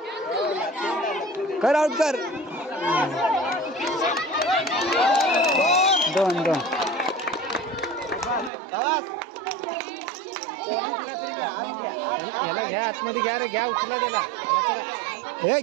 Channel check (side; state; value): left; drops out; at 8.5 s